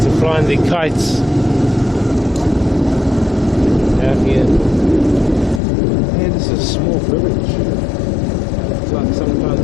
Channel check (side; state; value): right; drops out; at 5.6 s